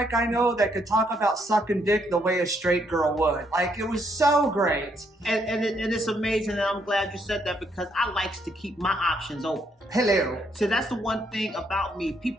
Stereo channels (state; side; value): normal; both; correlation 0.73